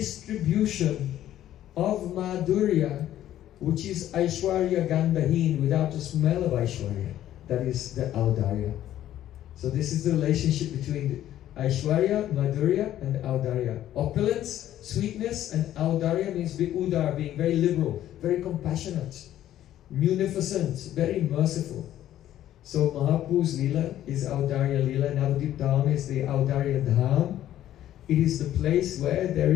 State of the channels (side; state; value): right; quieter; 12.4 dB